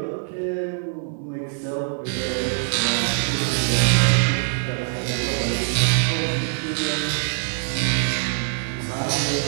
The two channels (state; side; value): silent; left; digital silence